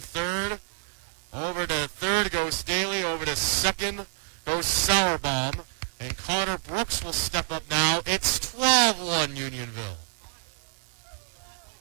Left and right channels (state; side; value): silent; left; digital silence